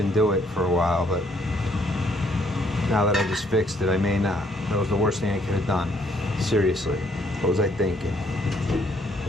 do it for a while. But now that I just fixed it, I may not. That was the worst thing I could have done. Seriously, what was I thinking? I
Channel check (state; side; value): normal; both; correlation 0.68